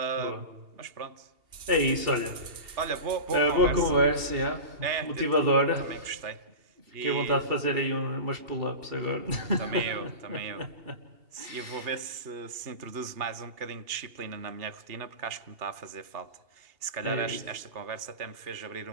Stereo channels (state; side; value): late; left; 2.8 ms